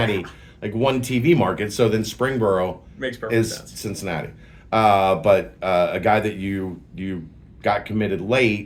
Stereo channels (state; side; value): identical; both; correlation 1.00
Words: one TV market, so then Springboro makes perfect sense. Cincinnati. But a guy that you got committed